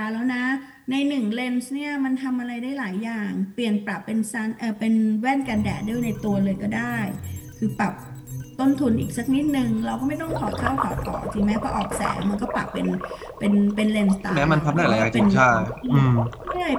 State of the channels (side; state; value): both; identical; correlation 1.00